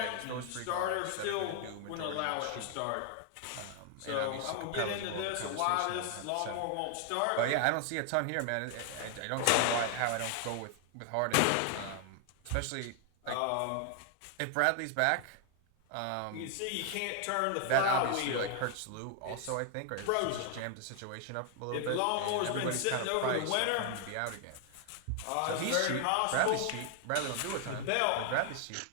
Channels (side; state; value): both; different; correlation 0.00